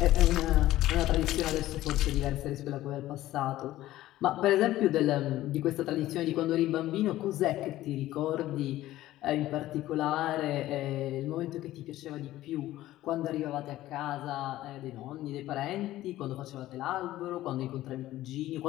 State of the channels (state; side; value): quieter; right; 15.1 dB